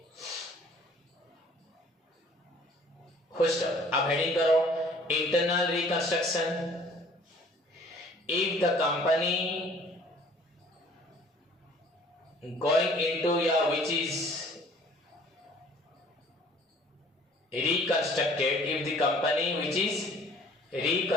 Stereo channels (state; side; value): normal; both; correlation 0.54